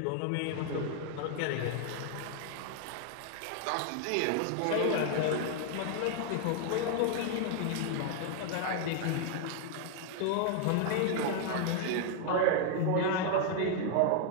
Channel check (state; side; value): different; both; correlation 0.00